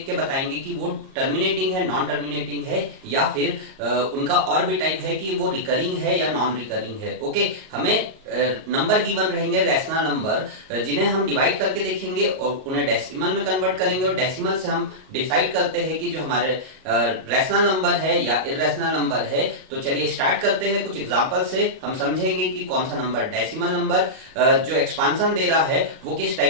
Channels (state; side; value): late; left; 38 ms